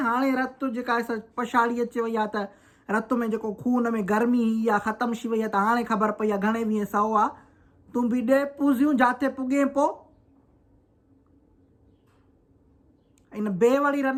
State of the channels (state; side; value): identical; both; correlation 1.00